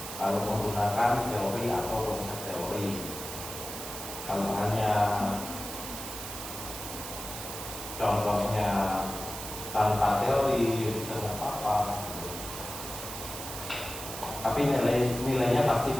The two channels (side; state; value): right; noise; hiss, 8 dB below the sound